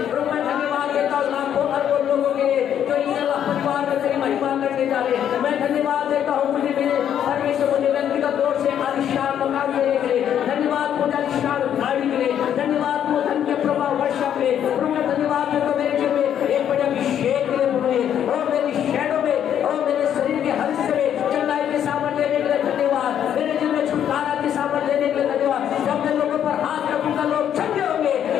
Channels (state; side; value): quieter; right; 9.7 dB